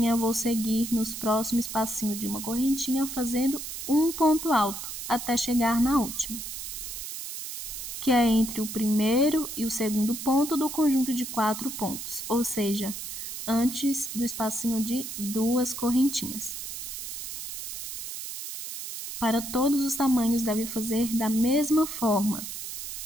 vou seguir nos próximos espacinhos de uma correntinha, fazendo um ponto alto, até chegar na última, que é entre o primeiro e o segundo ponto do conjunto de 4 pontos, ou seja, antes do espacinho de 2 correntinhas. Para todos os tamanhos, deve fazer da mesma forma.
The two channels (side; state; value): right; noise; hiss, 7 dB below the sound